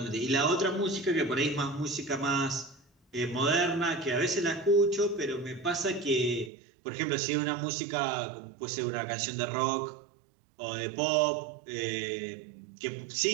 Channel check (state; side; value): drops out; left; at 6.5 s